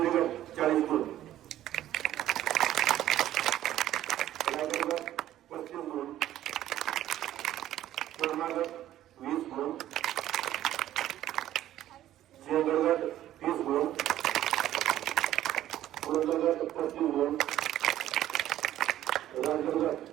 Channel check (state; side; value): quieter; left; 12.9 dB